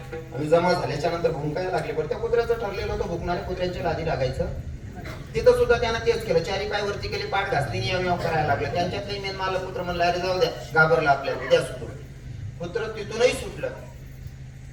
आणि जमा झाल्याच्या नंतर भुंकायला लागले पण त्या कुत्र्याचं ठरलेलं होतं भुंकणाऱ्या कुत्र्यांच्या लादी लागायचं तिथं सुद्धा त्यानं तेच केलं चारी पाय वरती केली पाठ घासली याव करायला लागलं त्यांच्यातले मेन मालक कुत्र म्हणलं अरे जाऊ द्या घाबरला आपल्याला द्या सुटून कुत्र तिथूनही सुटलं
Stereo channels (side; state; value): both; identical; correlation 1.00